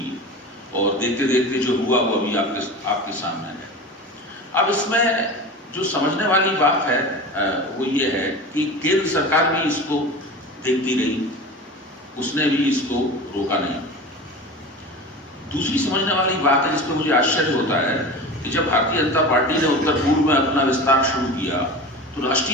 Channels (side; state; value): both; normal; correlation 0.31